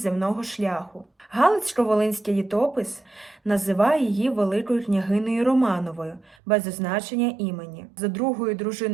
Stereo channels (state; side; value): drops out; left; at 6.4 s